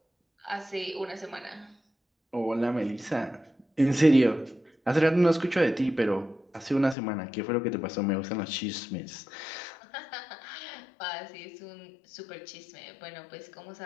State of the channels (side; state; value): right; drops out; at 7.0 s